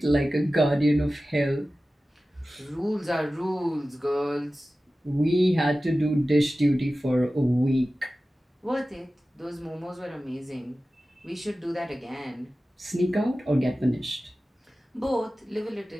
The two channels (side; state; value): both; normal; correlation 0.95